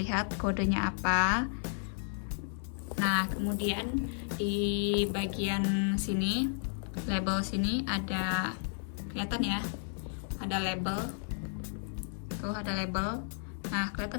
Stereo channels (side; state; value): right; silent; digital silence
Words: kodenya apa. Nah, kemudian di bagian sini, label sini ada, kelihatan ya, ada label. Tuh ada label. Nah,